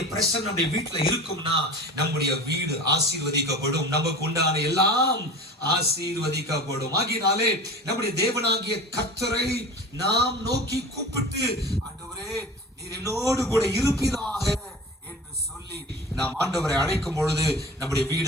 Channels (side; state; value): both; normal; correlation 0.36